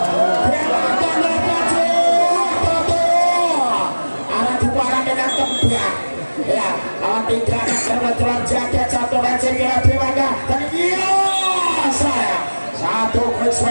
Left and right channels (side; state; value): both; inverted; correlation -1.00